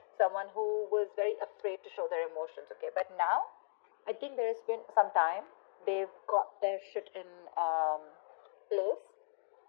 Someone who was very afraid to show their emotions, okay? But now, I think there has been some time. They've got their shit in place.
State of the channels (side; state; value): right; silent; digital silence